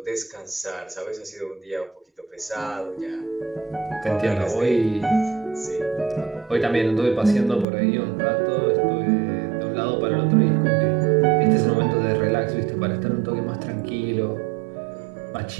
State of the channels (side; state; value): left; drops out; at 7.7 s